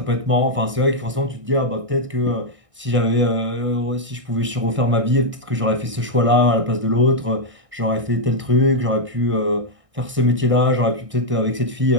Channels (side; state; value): left; late; 1.6 ms